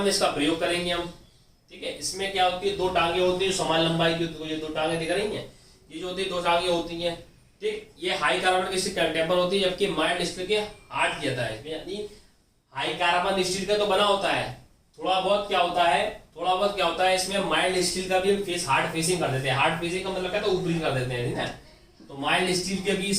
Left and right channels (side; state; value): both; identical; correlation 1.00